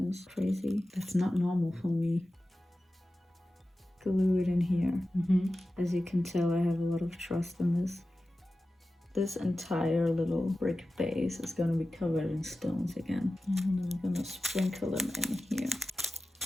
this. Crazy. That's not normal for me. Glue it in here. As you can tell, I have a lot of trust in this. This entire little brick base is gonna be covered in stones again. And I'm gonna sprinkle them in here.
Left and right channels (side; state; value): both; normal; correlation 0.94